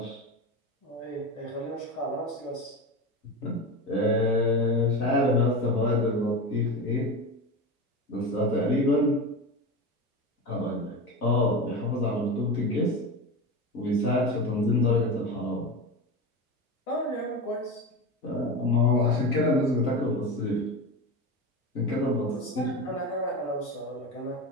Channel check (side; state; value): both; normal; correlation 0.22